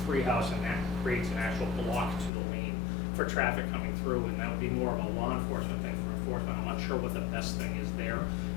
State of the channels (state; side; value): drops out; right; at 2.3 s